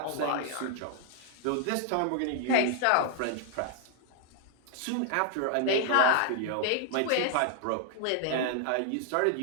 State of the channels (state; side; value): different; both; correlation 0.00